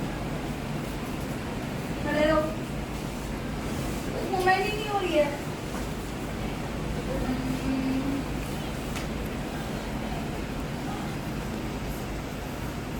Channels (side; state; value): both; identical; correlation 1.00